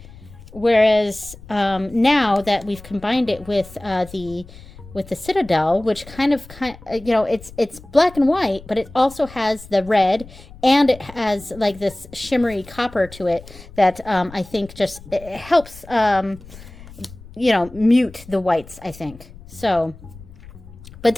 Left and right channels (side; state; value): left; noise; rumble, 19 dB below the sound